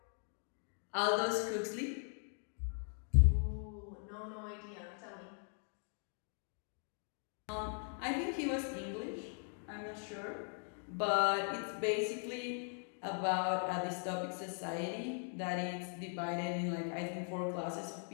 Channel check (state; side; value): silent; right; 51 dB below the other